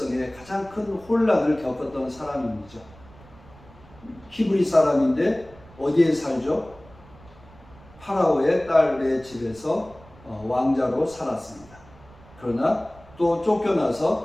가장 큰 혼란을 겪었던 사람이죠. 히브리 사람인데 어디에 살죠? 파라오의 딸의 집에서 왕자로 살았습니다. 그러나 또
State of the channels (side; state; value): right; noise; rumble, 23 dB below the sound